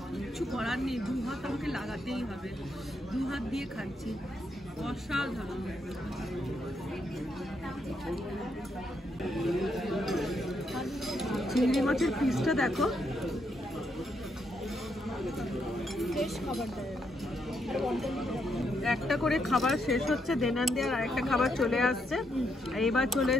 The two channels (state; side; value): normal; both; correlation 0.78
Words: কিচ্ছু করার নেই, দু হাত আমাকে লাগাতেই হবে, দু হাত দিয়ে খাচ্ছি, অসাধারণ। চিংড়ি মাছের পিসটা দেখো, একটা করে খাবার শেষ হচ্ছে, দেনান দেওয়ার আরেকটা খাবার চলে আসছে। এইবার চলে